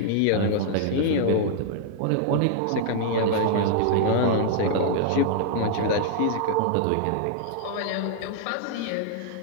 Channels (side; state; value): both; different; correlation -0.01